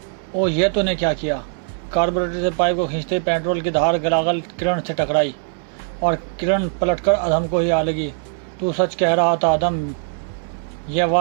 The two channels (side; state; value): left; silent; 65 dB below the other